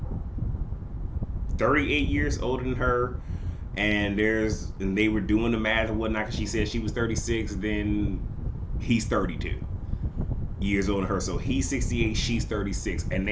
38 years older than her. And they were doing the math and whatnot. Cause she said she was 36. Then he's 32 years older than her. So he's 68, she's 36. And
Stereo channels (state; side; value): identical; both; correlation 1.00